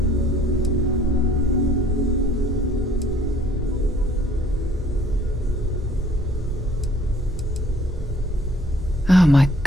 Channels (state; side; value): normal; both; correlation 0.57